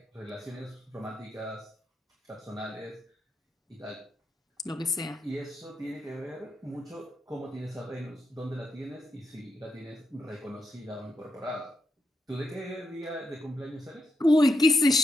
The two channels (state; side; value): normal; both; correlation 0.83